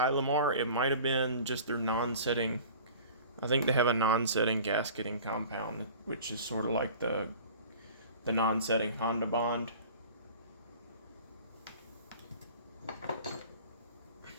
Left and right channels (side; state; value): both; inverted; correlation -0.42